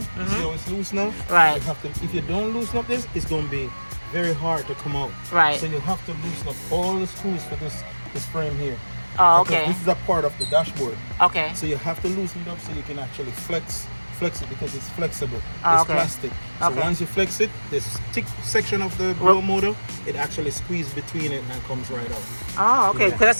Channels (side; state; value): both; inverted; correlation -1.00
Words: how it's loose now? Right. You have to, if you don't loosen up this, it's going to be very hard to come out. Right. So you have to loosen up all the screws for this frame here. Oh, okay. This is a part of the dashboard. Okay. So you have to loosen it up so you can actually flex it because it's flexible. Oh, it's okay. plastic. So okay. once you flex it, this thick section of the blower motor, it actually squeezes between it and comes right out. Oh, okay. Because I